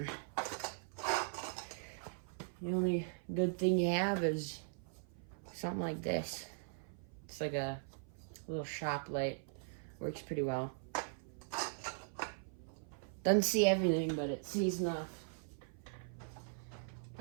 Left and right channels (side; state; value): left; silent; 51 dB below the other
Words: The only good thing you have is something like this. It's like a little shop light. Works pretty well. Doesn't see everything, but it sees enough.